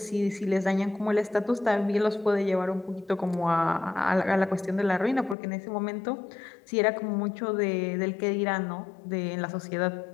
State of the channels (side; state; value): right; drops out; at 5.4 s